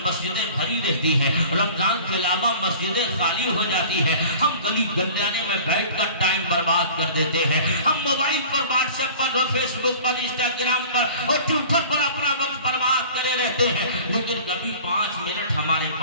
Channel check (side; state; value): both; inverted; correlation -0.43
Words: مسجدیں بھری رہتی ہیں، رمضان کے علاوہ مسجدیں خالی ہو جاتی ہیں، ہم گلی گنجانے میں بیٹھ کر ٹائم برباد کر دیتے ہیں، ہم موبائل پر، واٹس ایپ پر، فیس بک پر، انسٹاگرام پر اور ٹویٹر پر اپنا وقت برباد کرے رہتے ہیں، لیکن کبھی 5 منٹ ہمارے